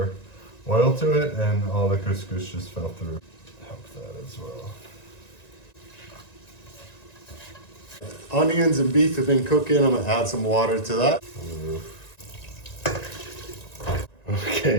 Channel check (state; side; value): late; right; 1.9 ms